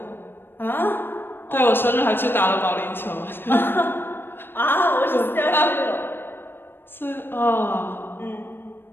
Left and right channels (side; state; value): right; late; 0.10 ms